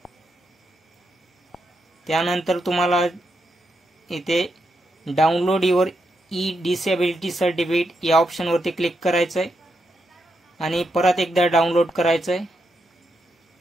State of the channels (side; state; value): both; normal; correlation 0.83